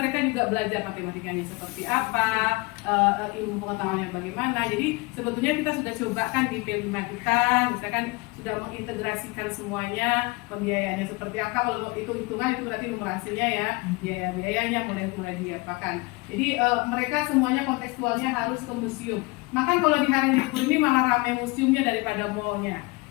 juga belajar matematikanya seperti apa, ilmu pengetahuannya bagaimana. Jadi sebetulnya kita sudah cobakan di P5 kita, misalkan sudah mengintegrasikan semuanya, pembiayaannya seperti apa. Kalau itu hitungan itu berarti numerasinya ya, biaya-biayanya mulai diapakan. Jadi mereka semuanya kontekstualnya harus ke museum. Maka kalau di hari libur ini malah ramai museumnya daripada mallnya.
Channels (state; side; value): quieter; right; 25.7 dB